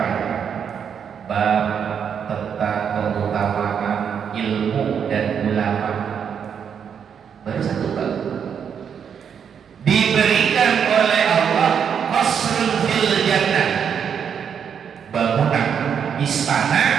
Bab tentang keutamaan ilmu dan ulama. Baru satu bab. Diberikan oleh Allah qasrun fil jannah, bangunan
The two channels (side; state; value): left; quieter; 7.5 dB